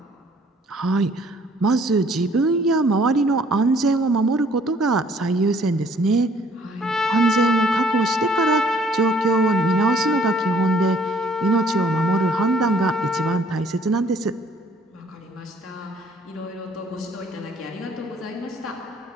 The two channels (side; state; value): both; normal; correlation 0.60